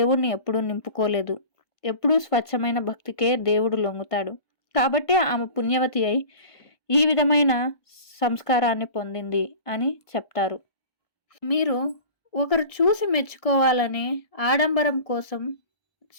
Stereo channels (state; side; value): late; right; 1.5 ms